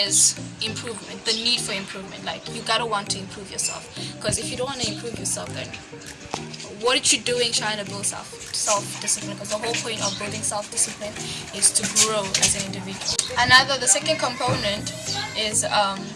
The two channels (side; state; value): both; identical; correlation 1.00